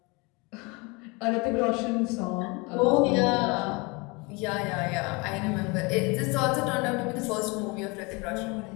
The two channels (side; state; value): right; quieter; 27.5 dB